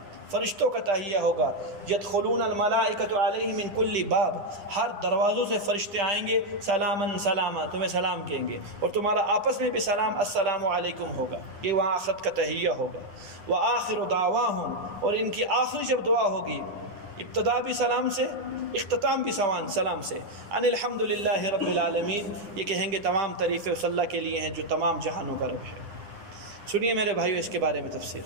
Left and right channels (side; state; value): left; late; 9.8 ms